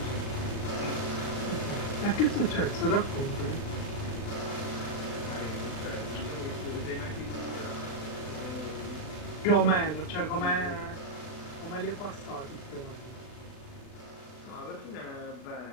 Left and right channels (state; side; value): late; right; 39 ms